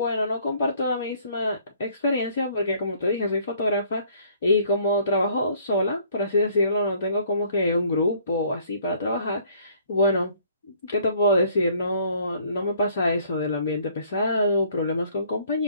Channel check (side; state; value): both; inverted; correlation -0.60